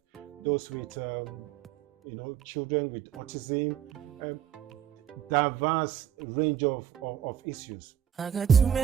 those with children with autism, diverse range of issues. I got too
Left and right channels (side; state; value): left; quieter; 9.5 dB